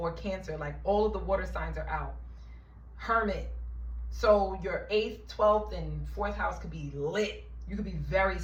Cancer. Like all of the water signs are out. Hermit. So your 8th, 12th, and 4th house could be lit. You could be very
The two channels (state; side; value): identical; both; correlation 1.00